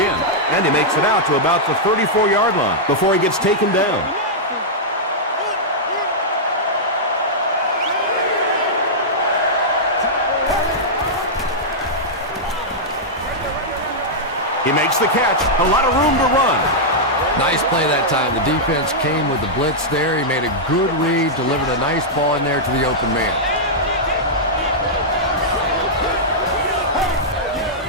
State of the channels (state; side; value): normal; both; correlation -0.08